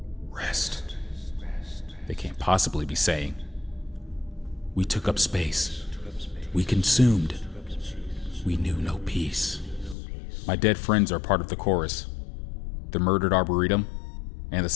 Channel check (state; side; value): drops out; right; at 10.0 s